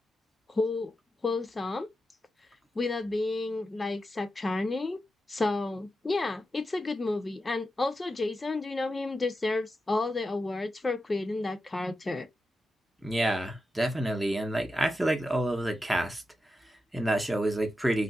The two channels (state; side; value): normal; both; correlation 0.89